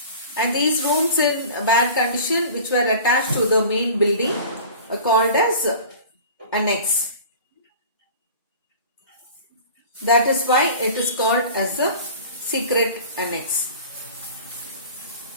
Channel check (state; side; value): inverted; both; correlation -0.41